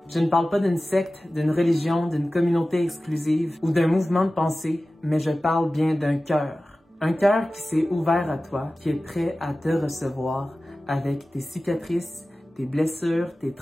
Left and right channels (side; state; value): both; normal; correlation 0.96